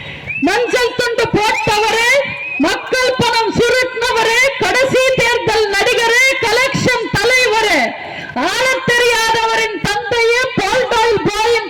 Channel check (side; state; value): both; identical; correlation 1.00